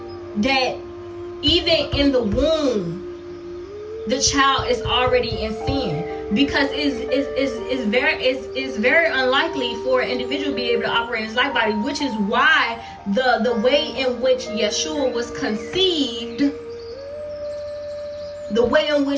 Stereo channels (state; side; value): identical; both; correlation 1.00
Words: even in the womb, the child is already in sin, because it's very unlikely for an individual to be able to operate in his light body, which is why the way in which Yeshua was conceived,